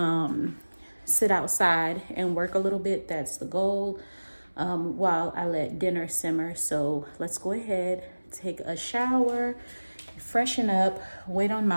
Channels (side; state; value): both; inverted; correlation -1.00